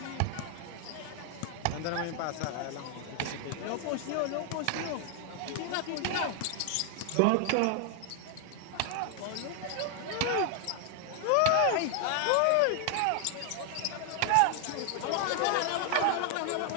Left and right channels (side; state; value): both; different; correlation 0.00